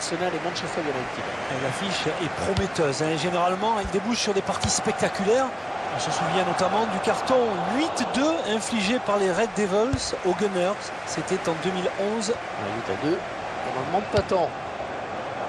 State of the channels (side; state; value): both; identical; correlation 1.00